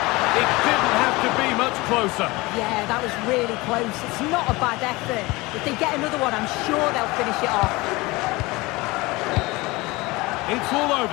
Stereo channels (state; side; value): quieter; right; 22.4 dB